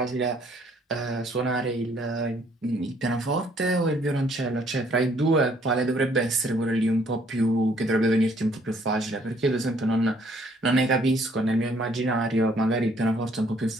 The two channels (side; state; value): both; normal; correlation 0.63